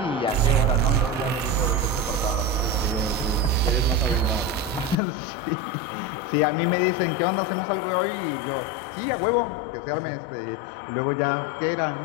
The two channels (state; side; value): drops out; right; at 5.0 s